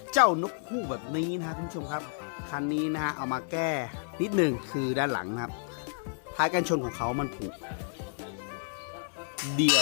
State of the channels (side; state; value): right; silent; 57 dB below the other